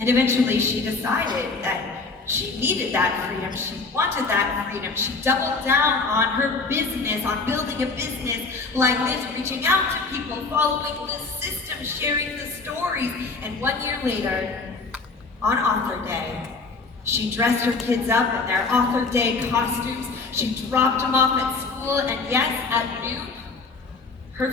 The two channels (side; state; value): right; quieter; 4.0 dB